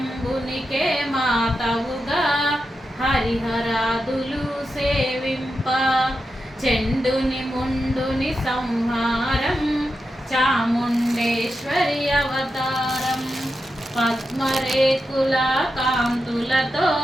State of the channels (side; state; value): both; normal; correlation 0.89